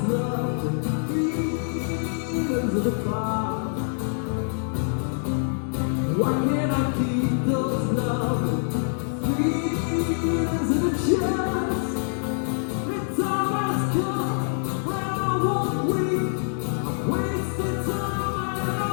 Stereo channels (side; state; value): right; silent; digital silence